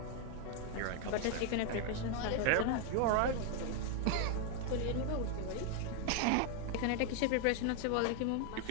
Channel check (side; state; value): both; different; correlation 0.01